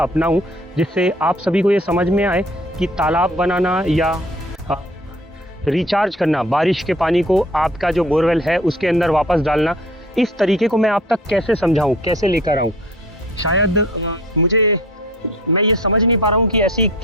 अपनाऊँ जिससे आप सभी को ये समझ में आए कि तालाब बनाना या रिचार्ज करना, बारिश के पानी को आपका जो बोरवेल है उसके अंदर वापस डालना, इस तरीके को मैं आप तक कैसे समझाऊँ, कैसे लेकर आऊँ। शायद मैं ये समझ नहीं पा रहा हूँ कि ऐसी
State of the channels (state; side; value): normal; both; correlation 0.49